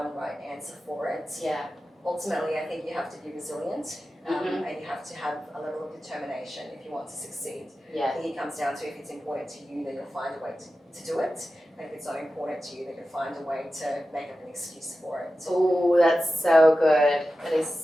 right answer for it. Yeah. Ultimately, I think you have to be resilient and you have to have a level of determination if you want to succeed. Yeah. I think it comes down to if it's important to you, then you'll find a way to do it. And if it's not important to you, then you'll find a way to make up an excuse for it. Oh, that's so good. That is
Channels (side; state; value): both; normal; correlation 0.93